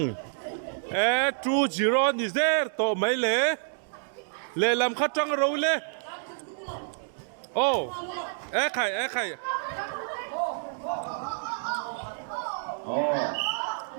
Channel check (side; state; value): left; silent; digital silence